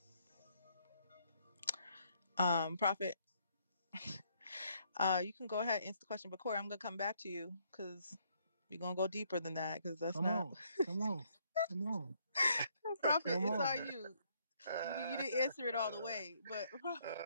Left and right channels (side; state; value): both; inverted; correlation -0.70